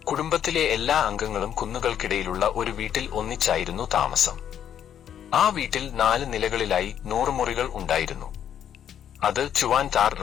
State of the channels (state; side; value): quieter; right; 9.5 dB